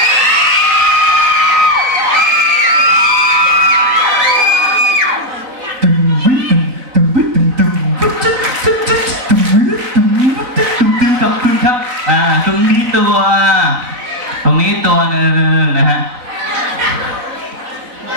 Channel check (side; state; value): left; late; 4.0 ms